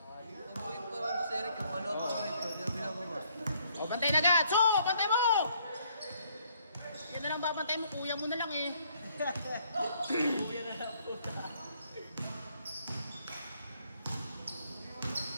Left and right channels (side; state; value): both; inverted; correlation -0.67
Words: Ang buhin para mo sa Eric, yung ano ako ito, hindi na binababa. O, bantay na agad. So, bantay mo! Yan na lang babantay mo. Kuya mo na lang eh.